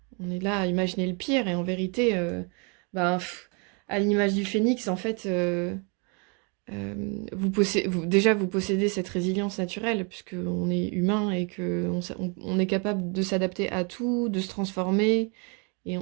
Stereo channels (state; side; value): quieter; left; 34.4 dB